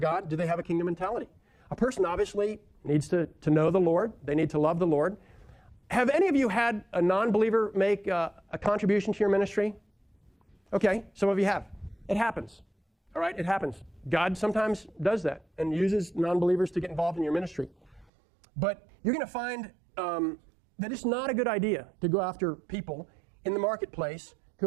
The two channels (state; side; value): drops out; left; at 18.1 s